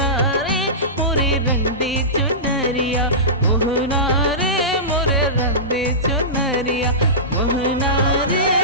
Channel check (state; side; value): normal; both; correlation -0.19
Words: रे मोरे रंग दे चुनरिया, मोहना रे मोरे रंग दे चुनरिया, मोहना रे